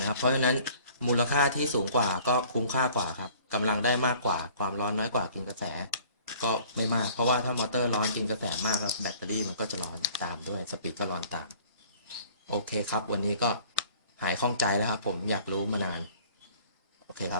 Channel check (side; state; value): both; inverted; correlation -0.52